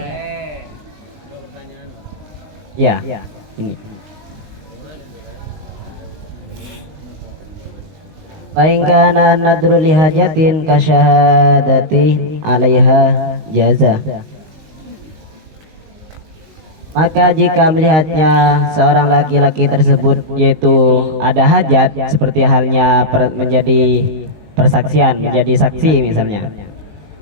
Ya, ini. Bain kana nadru li hajatin kasyahadati 'alaiha jaza. Maka jika melihatnya seorang laki-laki tersebut yaitu ada hajat, seperti halnya menjadi persaksian, menjadi saksi misalnya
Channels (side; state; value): left; late; 19 ms